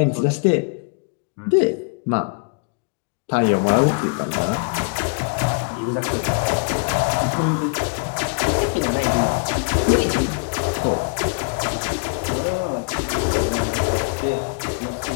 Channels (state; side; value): quieter; right; 34.4 dB